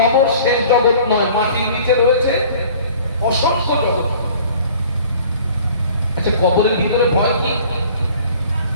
শেষ জগৎ নয়, মাটির নিচে রয়েছে অসংখ্য জগৎ। আচ্ছা, কবরের ভিতরে ভয় কি?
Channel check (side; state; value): both; inverted; correlation -0.50